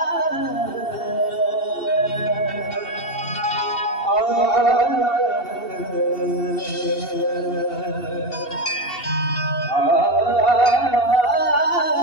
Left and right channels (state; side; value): late; right; 2.7 ms